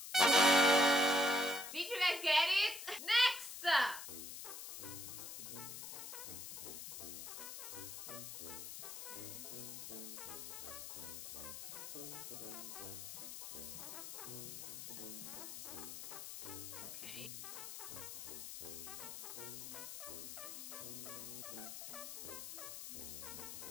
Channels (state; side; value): noise; left; hiss, 8 dB below the sound